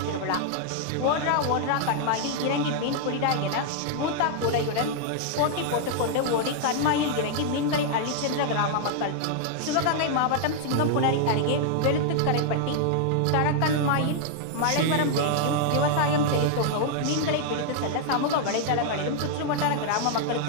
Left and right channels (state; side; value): different; both; correlation -0.01